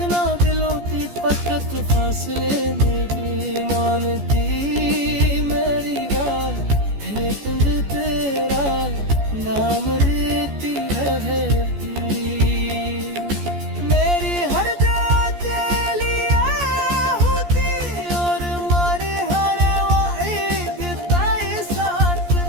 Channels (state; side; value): late; left; 14 ms